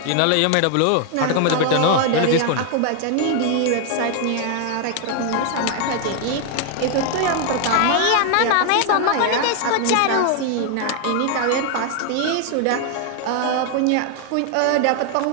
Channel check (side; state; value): both; different; correlation 0.00